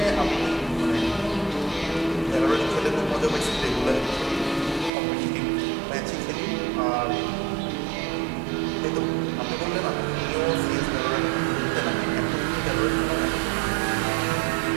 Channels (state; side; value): drops out; left; at 4.9 s